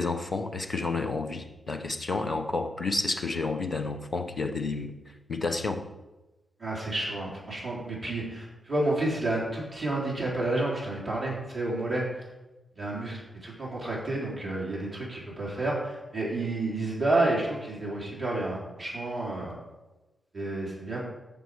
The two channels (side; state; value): both; normal; correlation 0.80